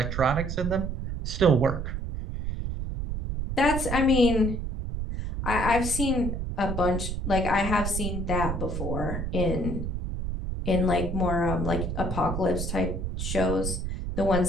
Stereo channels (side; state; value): right; noise; rumble, 3 dB below the sound